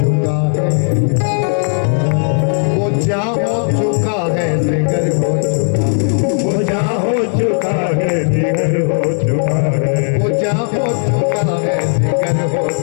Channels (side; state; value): right; silent; 61 dB below the other